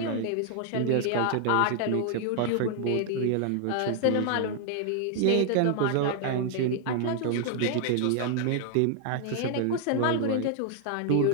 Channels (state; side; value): different; both; correlation 0.00